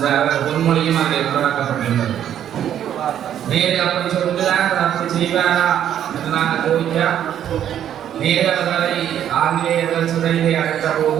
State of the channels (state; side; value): quieter; left; 10.2 dB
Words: அவர் பொன்மொழியும் அதில் உருவாக்கப்பட்டுள்ளது. நேரு அப்படி சொல்கிறார், அப்படி செய்வாரா என்று நாங்கள் கோரிக்கா. நேரு அவர்களை ஆங்கிலேயர்கள் சிறையிலே அடைத்த